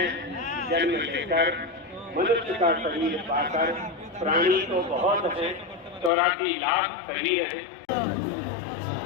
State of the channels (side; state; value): right; drops out; at 6.1 s